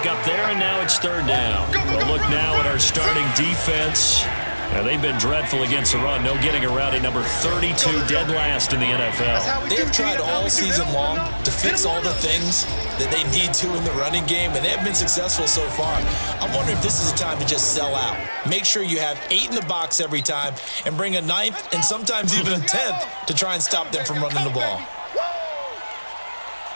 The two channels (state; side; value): inverted; both; correlation -1.00